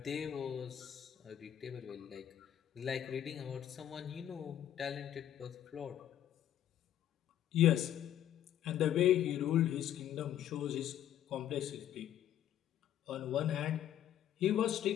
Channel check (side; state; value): right; quieter; 11.0 dB